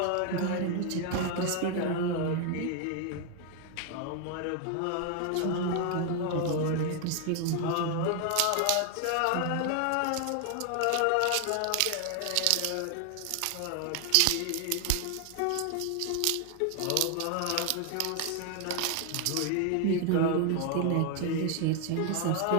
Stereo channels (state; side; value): different; both; correlation 0.00